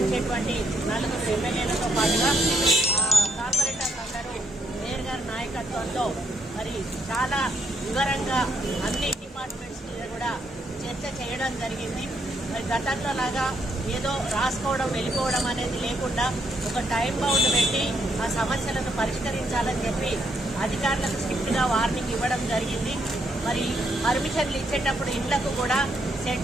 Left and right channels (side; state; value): both; normal; correlation 0.74